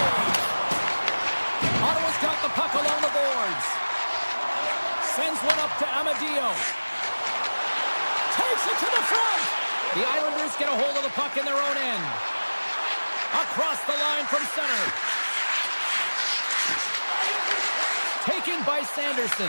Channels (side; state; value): both; inverted; correlation -1.00